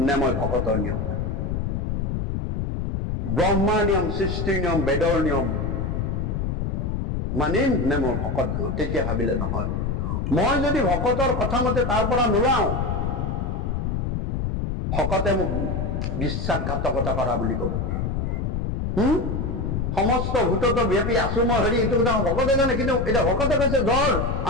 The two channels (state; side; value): noise; left; rumble, 1 dB below the sound